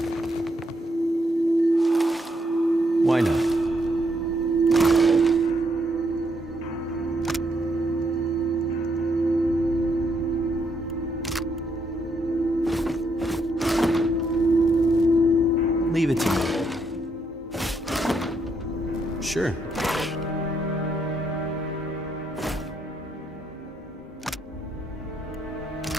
Why not? Sure.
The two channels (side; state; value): both; normal; correlation 0.76